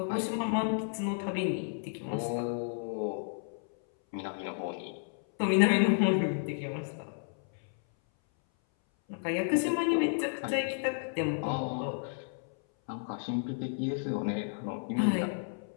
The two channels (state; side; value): silent; right; 56 dB below the other